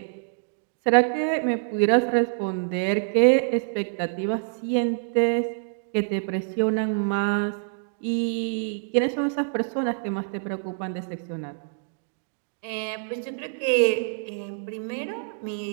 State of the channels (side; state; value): left; silent; digital silence